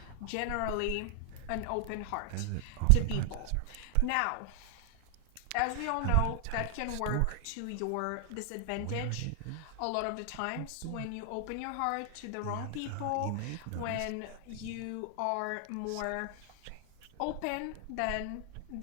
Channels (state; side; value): different; both; correlation 0.00